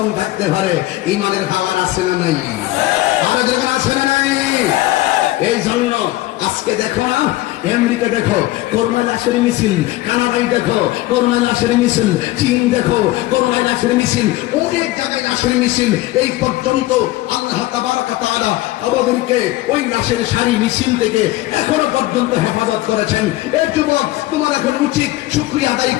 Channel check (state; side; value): quieter; right; 17.4 dB